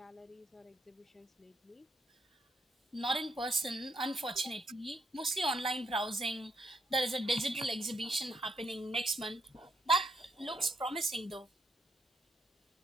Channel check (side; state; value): both; normal; correlation 0.75